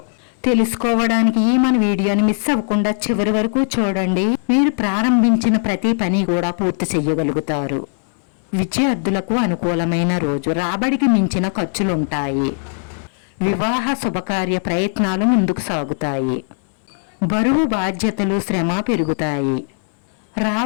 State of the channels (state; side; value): silent; right; 66 dB below the other